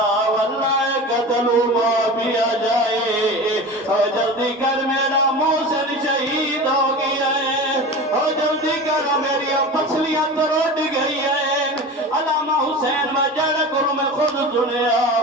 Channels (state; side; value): normal; both; correlation 0.32